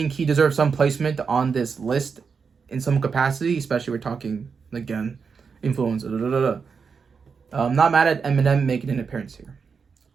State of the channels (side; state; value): left; quieter; 5.6 dB